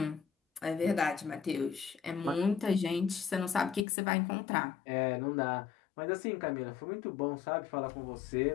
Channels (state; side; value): drops out; right; at 3.9 s